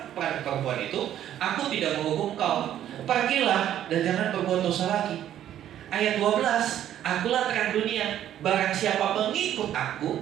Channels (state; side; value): quieter; left; 11.3 dB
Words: pada perempuan itu, aku tidak menghukum kau, pergilah dan jangan berbuat dosa lagi. Ayat 12, akulah terang dunia, barang siapa mengikut aku.